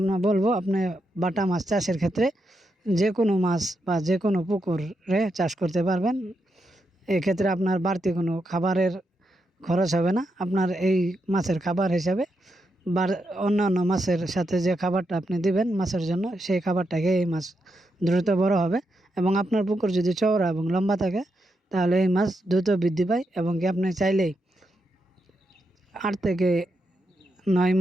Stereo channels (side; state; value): both; normal; correlation 0.84